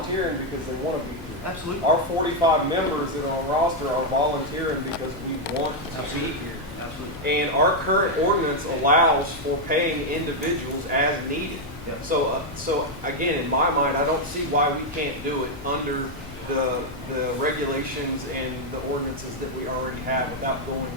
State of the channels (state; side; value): noise; left; hum, 19 dB below the sound